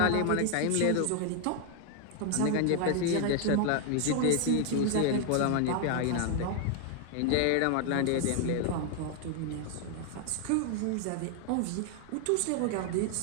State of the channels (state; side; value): different; both; correlation 0.00